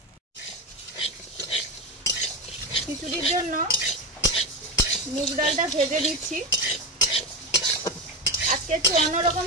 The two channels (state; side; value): normal; both; correlation 0.18